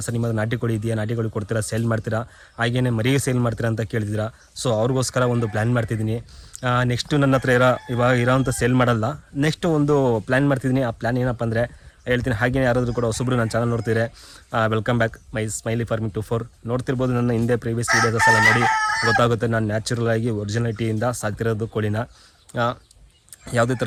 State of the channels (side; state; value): both; identical; correlation 1.00